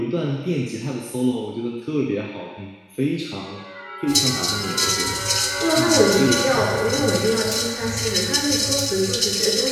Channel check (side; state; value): both; identical; correlation 1.00